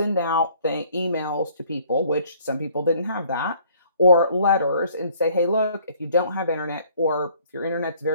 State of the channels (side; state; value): both; inverted; correlation -0.59